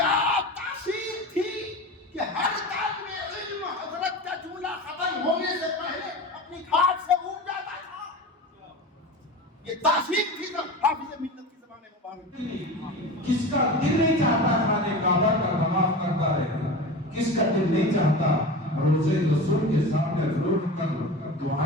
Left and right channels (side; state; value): both; normal; correlation 0.30